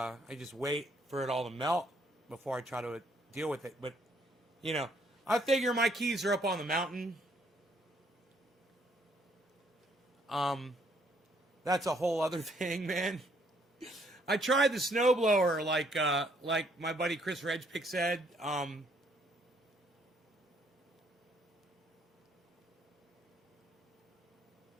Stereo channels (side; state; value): both; normal; correlation 0.67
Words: just wait for it all to melt before I try to deal with it. But, you know, I figure my keys are up on the mountain. That's a whole other thing, man. I tried the snowblower, like my buddy Chris Redpick said.